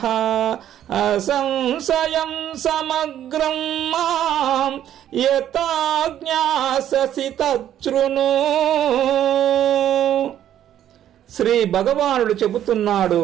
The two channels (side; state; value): left; quieter; 11.1 dB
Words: అసంశయం సమగ్రం మాం యథా జ్ఞాససి తచ్ఛృణు. శ్రీ భగవానుడు చెబుతున్నాడు,